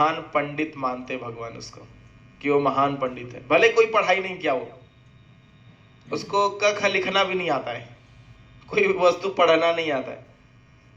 पंडित मानते भगवान उसको कि वो महान पंडित है। भले कोई पढ़ाई नहीं किया हो, उसको क ख लिखना भी नहीं आता है, कोई वस्तु पढ़ना नहीं आता है,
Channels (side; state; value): both; identical; correlation 1.00